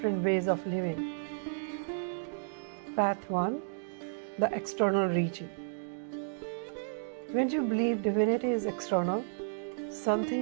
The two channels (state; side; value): silent; left; digital silence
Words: ways of living. Path 1, the external reaching. When you believe divinity is external,